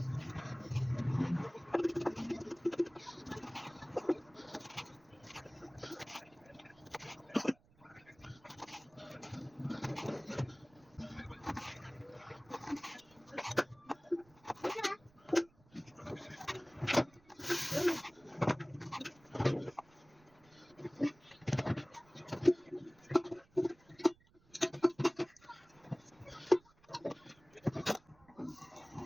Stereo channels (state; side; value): noise; right; rumble, 29 dB below the sound